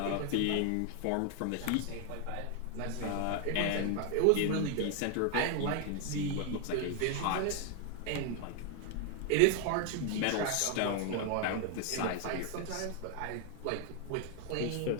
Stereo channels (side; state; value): both; different; correlation 0.00